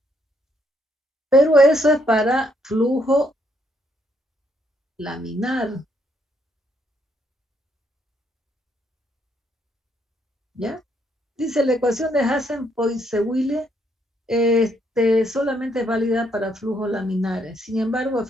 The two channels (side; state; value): both; normal; correlation 0.72